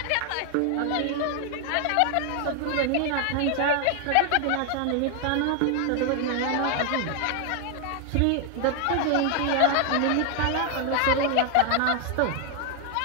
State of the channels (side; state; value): both; different; correlation 0.00